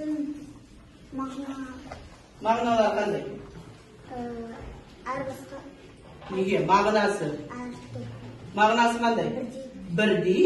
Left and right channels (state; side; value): identical; both; correlation 1.00